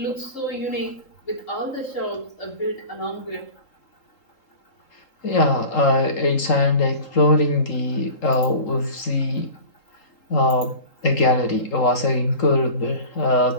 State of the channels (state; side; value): late; right; 3.8 ms